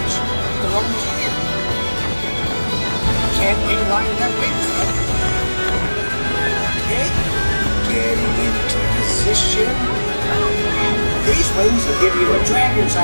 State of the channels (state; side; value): inverted; both; correlation -1.00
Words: the lungs here. Can't be lined up with them. Okay. Getting into position. These wings will give you a dragon's